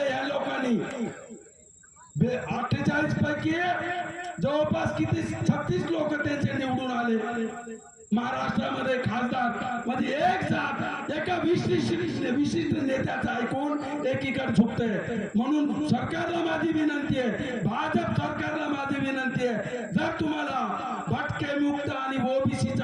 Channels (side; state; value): both; identical; correlation 1.00